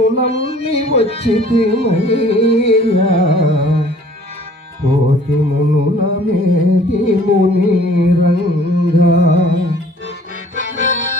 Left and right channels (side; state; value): both; normal; correlation 0.54